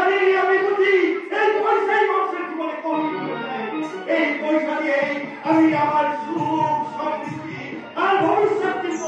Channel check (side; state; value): both; identical; correlation 1.00